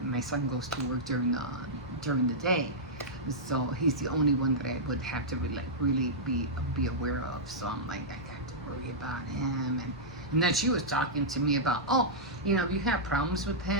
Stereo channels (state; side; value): normal; both; correlation -0.11